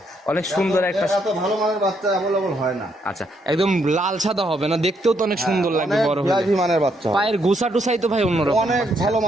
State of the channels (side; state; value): both; normal; correlation 0.74